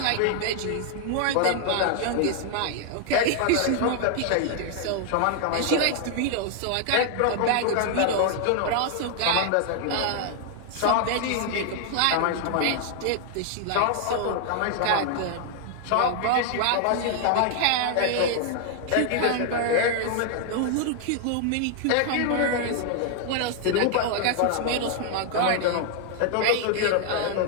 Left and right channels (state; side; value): different; both; correlation 0.00